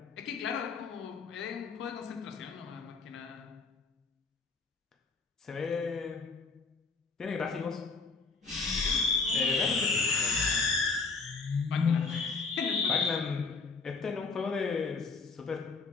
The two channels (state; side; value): quieter; right; 4.4 dB